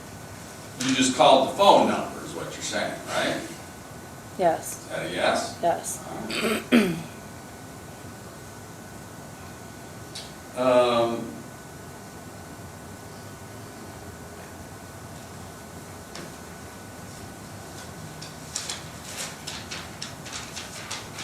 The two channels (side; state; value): both; identical; correlation 1.00